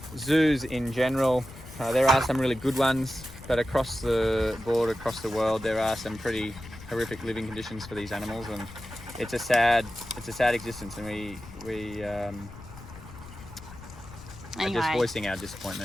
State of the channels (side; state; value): left; noise; rumble, 16 dB below the sound